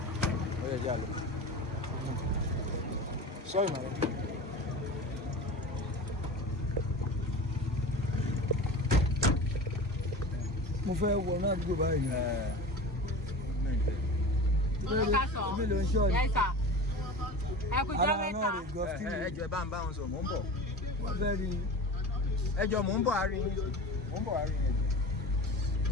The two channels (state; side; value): normal; both; correlation 0.33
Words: Sorry, madam. Mo fẹ́ wọ náà dúró báyìí. Ẹjọ́ bá ń bá wọn sọ, mò ń bọ̀. Ẹjọ́ mò ń bọ̀ àárín yín.